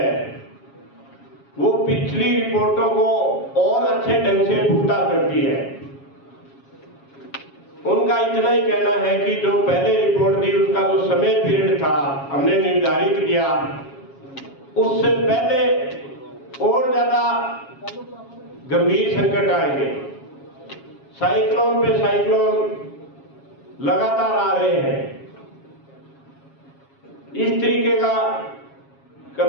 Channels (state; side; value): late; right; 7.3 ms